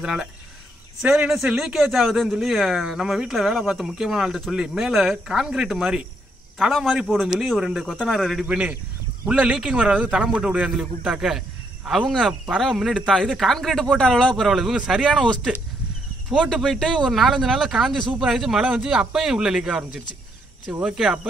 சரின்னு சரி லீக்கேஜ் ஆகுதுன்னு சொல்லி நம்ம வீட்டில் வேலை பார்த்த முக்கியமான ஆள்கிட்ட சொல்லி மேலே கான்கிரீட் மாதிரி தலை மாதிரி போடுன்னு சொல்லி ஒரு 2 கொத்தனாரை ரெடி பண்ணி உள்ள லீக்கிங் வராது தலை போட்டு விடுவான்னு சொல்லி கூப்பிட்டாக்க அவங்க பரவாயில்ல முன்னாடி இது கான்கிரீட் போட்ட அளவுலாம் பரவாயில்ல, இவங்க சரியான ஒஸ்ட்டு போட்டு போயிட்டு ஒரு 4-5 நாளில் காஞ்சி சூப்பர் ஆகிடுச்சு. மழை வந்து அப்பையும் உள்ள லீக் ஆரம்பிச்சிருச்சு. சரி ஓகே,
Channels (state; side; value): normal; both; correlation 0.74